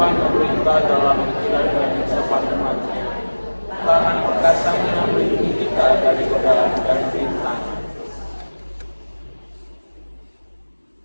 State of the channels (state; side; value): inverted; both; correlation -1.00